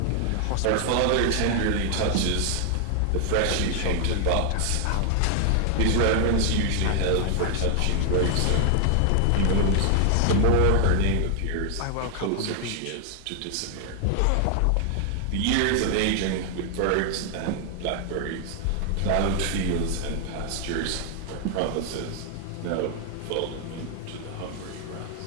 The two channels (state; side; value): different; both; correlation 0.00